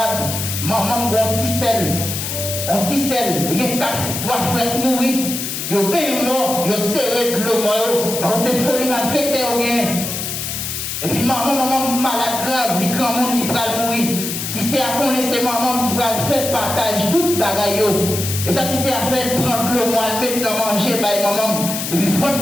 maman ont un petit sel. On dit celle, il y a 3 frères mourir, ils ont bien mort, ils ont serré de l'eau mort, parce que c'est folie infectée ou rien. Et puis maman malade grave, les grands monde qui va mourir. Si c'est à connaître maman qui va faire partage tout bagaille. Et ça qui c'est à faire prendre l'eau moi, mettre manger by maman. Et puis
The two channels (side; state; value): left; noise; hiss, 4 dB below the sound